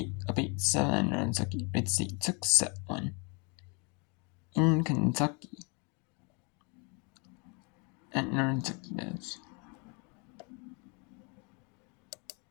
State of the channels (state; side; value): quieter; right; 33.0 dB